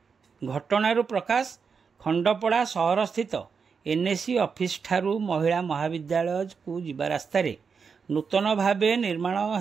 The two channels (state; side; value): quieter; left; 5.7 dB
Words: घटनारू प्रकाश खंडपड़ा सहर स्थित एनएसी ऑफिस ठारू महिला महाविद्यालय को जिबा रास्तारे नूतन भावे निर्माण